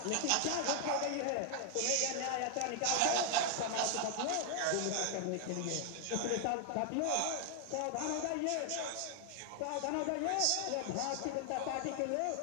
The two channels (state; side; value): different; both; correlation 0.00